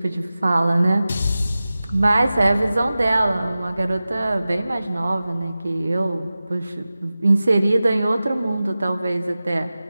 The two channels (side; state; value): both; inverted; correlation -0.96